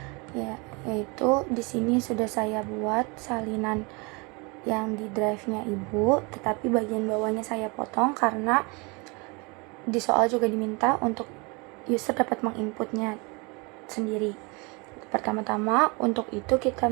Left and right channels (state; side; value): quieter; left; 29.0 dB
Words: Yaitu di sini sudah saya buat salinan yang di drive-nya Ibu, tetapi bagian bawahnya saya potong karena di soal juga diminta untuk user dapat menginputnya sendiri. Pertama-tama untuk itu kita